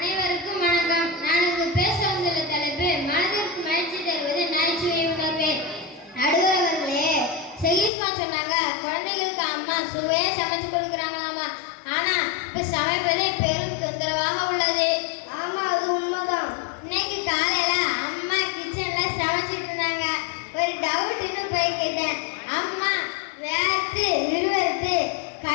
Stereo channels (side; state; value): right; drops out; at 7.9 s